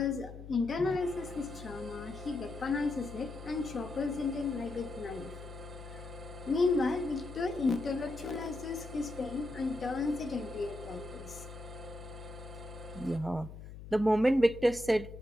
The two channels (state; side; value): noise; left; hum, 13 dB below the sound